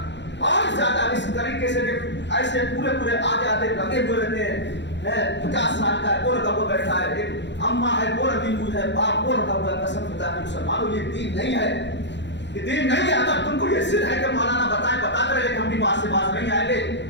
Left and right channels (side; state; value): right; late; 0.52 ms